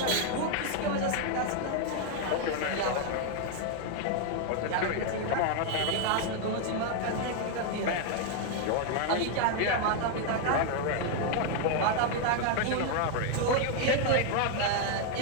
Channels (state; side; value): different; both; correlation 0.00